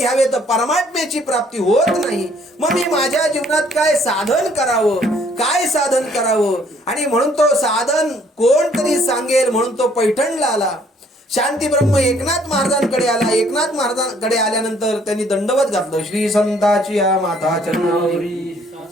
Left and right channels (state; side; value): normal; both; correlation 0.62